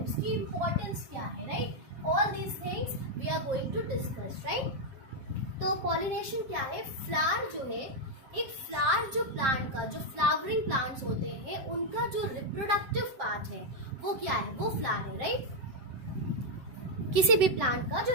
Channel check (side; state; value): left; late; 7.9 ms